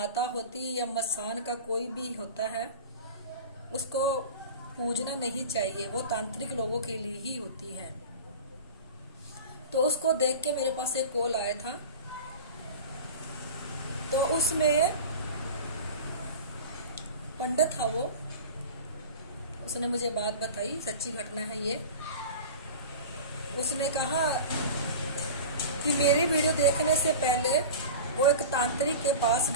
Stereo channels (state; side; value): inverted; both; correlation -0.33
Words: होती है या मसान का कोई भी होता है, उसको पूजना नहीं चाहिए, वो तांत्रिक लोगों के लिए ही होती है। तो उसको देख के मेरे पास एक कॉल आया था। तो उसमें पंडित था वो, उसने मुझे बात बताई, सच्ची घटना है ये। उसने कहा कि मेरी वीडियो देखने से पहले वो एक तांत्रिक के पास